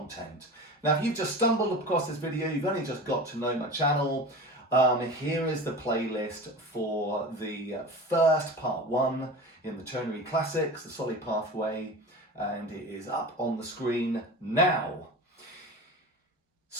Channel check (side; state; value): both; normal; correlation 0.32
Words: Now, if you've just stumbled across this video, you've only just got to know my channel, here is the playlist for the first part one in the ternary classics, the soli pathway, and it is up on the screen now.